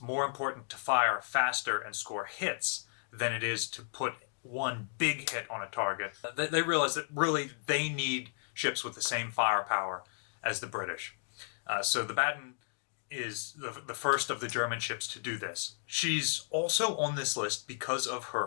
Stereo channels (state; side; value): silent; right; digital silence